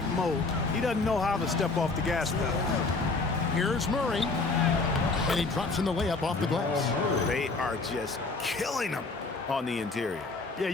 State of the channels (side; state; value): right; quieter; 3.7 dB